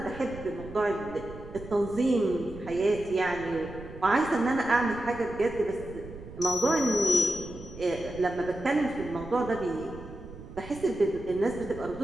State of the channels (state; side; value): noise; right; rumble, 14 dB below the sound